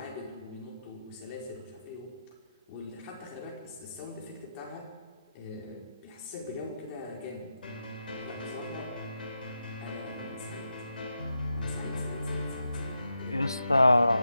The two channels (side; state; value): both; inverted; correlation -0.86